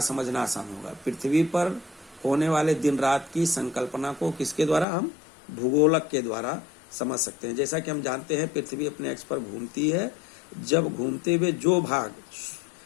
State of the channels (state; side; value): drops out; right; at 4.9 s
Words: समझना आसान होगा? पृथ्वी पर होने वाले दिन रात की संकल्पना को किसके द्वारा? हम भूगोलक के द्वारा समझ सकते हैं। जैसा कि हम जानते हैं पृथ्वी अपने अक्ष पर घूमती है। जब घूमते हुए जो भाग